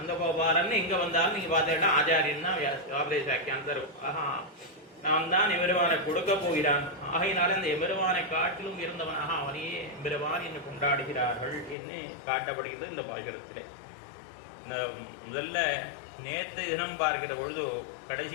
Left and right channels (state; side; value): drops out; right; at 11.8 s